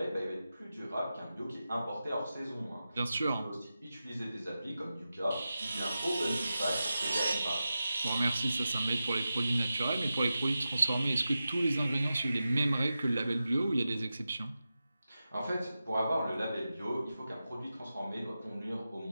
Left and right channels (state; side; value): inverted; both; correlation -0.92